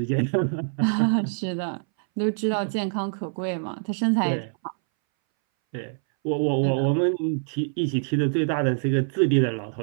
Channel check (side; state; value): left; silent; 61 dB below the other